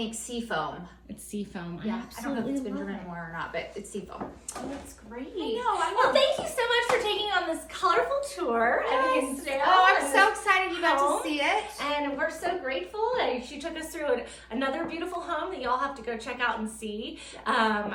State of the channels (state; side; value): identical; both; correlation 1.00